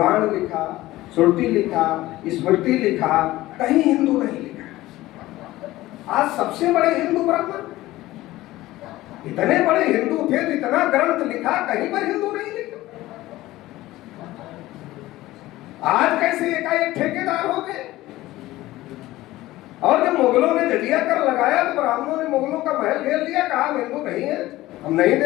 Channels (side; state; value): right; quieter; 17.0 dB